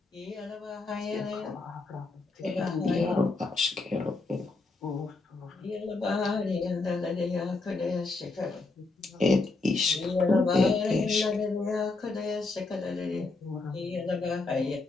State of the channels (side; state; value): right; quieter; 3.6 dB